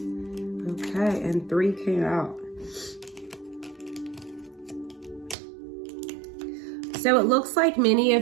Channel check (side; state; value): left; drops out; at 5.4 s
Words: Okay, and 3 came out. So it looks like many